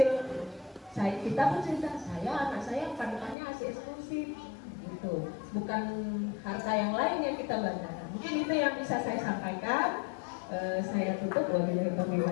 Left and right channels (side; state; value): right; drops out; at 3.4 s